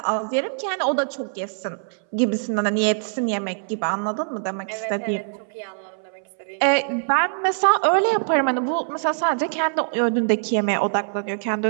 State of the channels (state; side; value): silent; left; 63 dB below the other